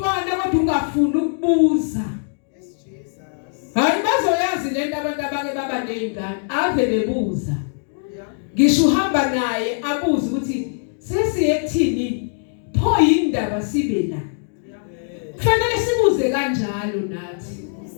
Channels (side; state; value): right; silent; digital silence